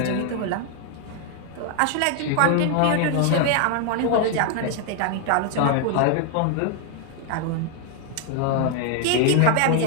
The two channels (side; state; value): both; different; correlation 0.00